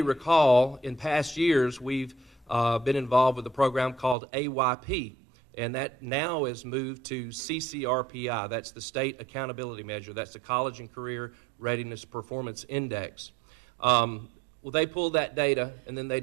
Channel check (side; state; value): left; drops out; at 4.2 s